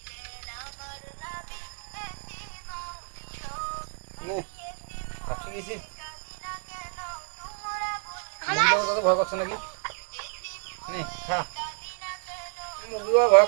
ভাবছি গেছি ভয় করছো নাকি? নে খা। মুরগিও ভয়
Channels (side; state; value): left; silent; 58 dB below the other